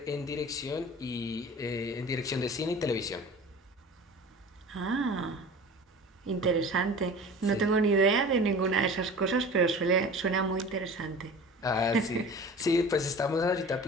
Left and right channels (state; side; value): normal; both; correlation 0.39